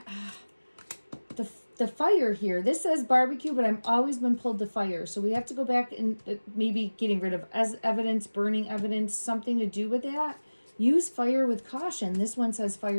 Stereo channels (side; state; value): both; inverted; correlation -1.00